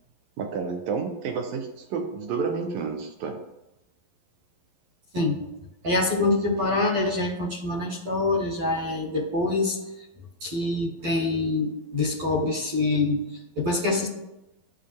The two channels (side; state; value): left; late; 11 ms